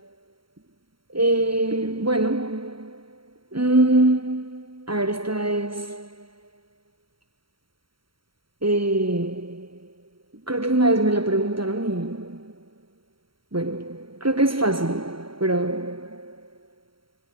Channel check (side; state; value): left; late; 0.74 ms